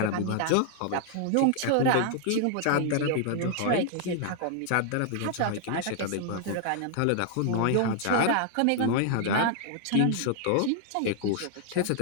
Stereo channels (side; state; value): both; different; correlation 0.00